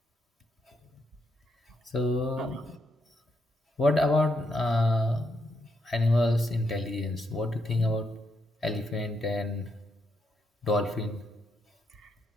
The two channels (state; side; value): normal; both; correlation 0.79